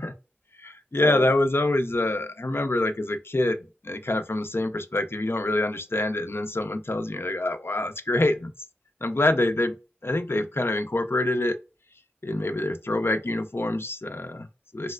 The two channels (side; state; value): both; normal; correlation 0.83